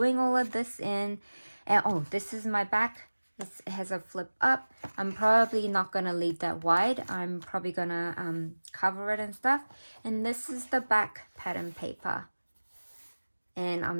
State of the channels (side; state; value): both; inverted; correlation -1.00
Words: all of this in. And oh, this is my back. It has a flip up. I'm probably not going to leave that wide. I'm probably going to cover it and stuff. And this is the back pattern paper. And